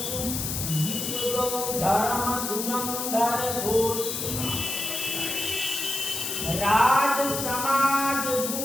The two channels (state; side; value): noise; left; hiss, 3 dB below the sound